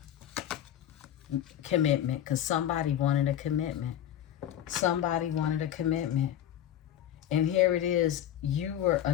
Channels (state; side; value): quieter; right; 11.0 dB